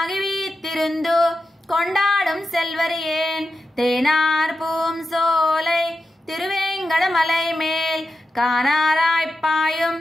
வீத்திருந்து கொண்டாடும் செல்வரியேன் தேனார் பூம் சோலை திருவேங்கடமலை மேல் காணாராய்ப்பாயும்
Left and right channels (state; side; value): normal; both; correlation 0.90